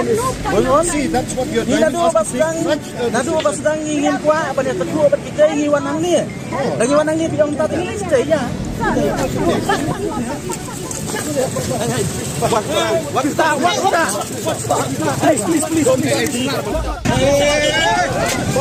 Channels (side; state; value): both; identical; correlation 1.00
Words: is going on. See, that's what you're Ni trying to nado ba ask me. sedang ingin kuat apa dia tetua apa kita ingin wanang ni. Lagi wanang ni bilang tak ini stay ya. What is that? Hey, please.